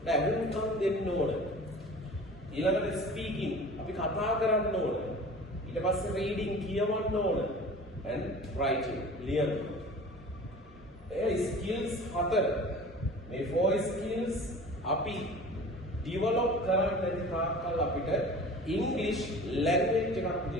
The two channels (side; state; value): both; normal; correlation 0.41